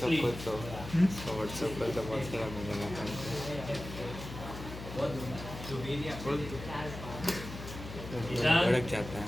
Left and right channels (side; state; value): left; noise; hum, 10 dB below the sound